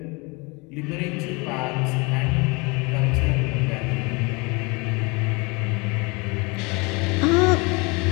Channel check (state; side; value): quieter; right; 27.9 dB